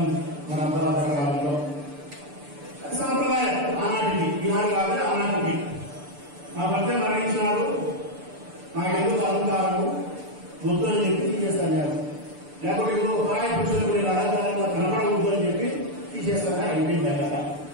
మన కాలంలో సాంప్రదాయం. ఆనాటికి ఈనాడు కాదు, ఆనాటికి. మా భర్త మరణించినాడు, నాకు ఎందుకు అలంకారము వద్దు అని చెప్పి తీసేస్తాను. లేకపోతే ఇంకో పరాయి పురుషులకు నేను అలంకారంగా కనపడవద్దు అని చెప్పి తీసేస్తాను. అయిపోయింది కదా.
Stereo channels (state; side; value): late; left; 6.8 ms